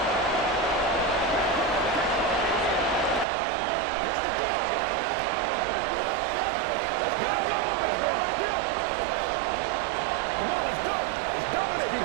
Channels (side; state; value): left; drops out; at 3.2 s